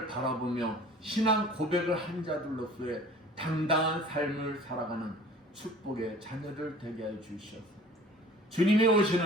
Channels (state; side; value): normal; both; correlation 0.47